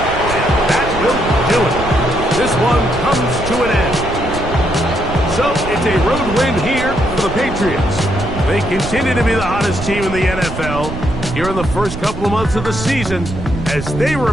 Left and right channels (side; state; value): right; noise; rumble, 8 dB below the sound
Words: And that will do it. This one comes to an end. So it's a road win here for the Patriots. They continue to be the hottest team in the NFL here in the first couple of months of the season as they